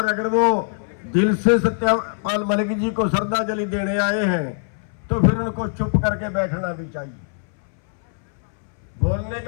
अगर वो दिल से सत्यपाल मलिक जी को श्रद्धांजलि देने आए हैं तो फिर उनको चुप करके बैठना भी चाहिए, बोलने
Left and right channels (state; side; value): silent; right; 62 dB below the other